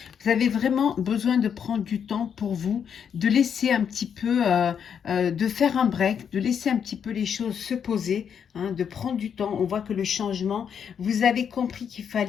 Vous avez vraiment besoin de prendre du temps pour vous, de laisser un petit peu, de faire un break, de laisser un petit peu les choses se poser, hein, de prendre du temps. On voit que le changement, vous avez compris qu'il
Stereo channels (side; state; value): right; quieter; 7.7 dB